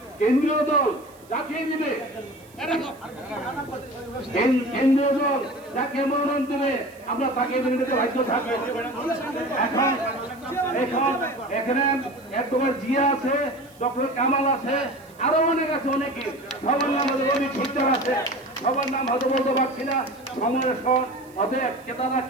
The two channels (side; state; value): right; noise; hiss, 27 dB below the sound